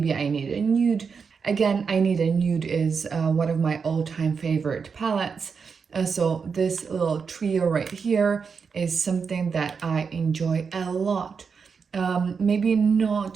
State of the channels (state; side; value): quieter; left; 5.7 dB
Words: I Need a Nude. Again, I Need a Nude is one of my all-time favorite palettes. So this little trio right here is something that I enjoy a lot. Maybe